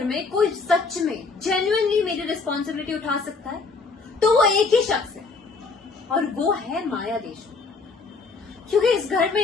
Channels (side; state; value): right; quieter; 4.3 dB